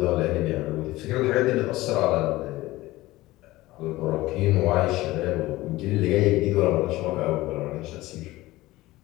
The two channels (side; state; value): right; quieter; 18.3 dB